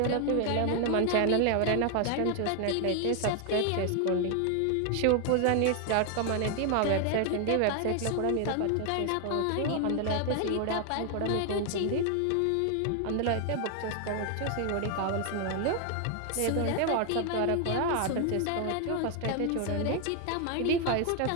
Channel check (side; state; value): both; different; correlation 0.00